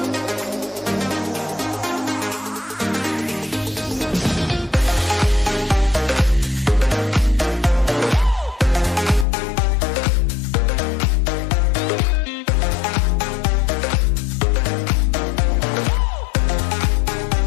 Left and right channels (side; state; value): right; drops out; at 9.2 s